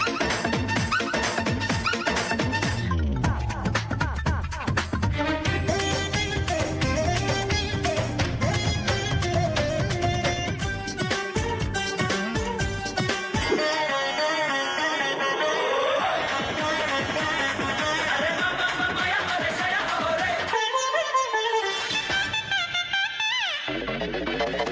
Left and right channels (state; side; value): identical; both; correlation 1.00